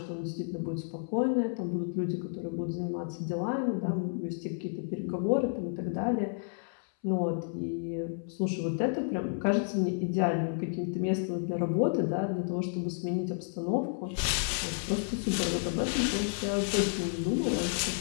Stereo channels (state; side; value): silent; right; 57 dB below the other